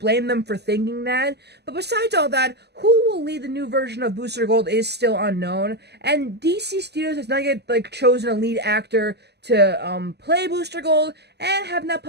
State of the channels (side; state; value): left; late; 0.49 ms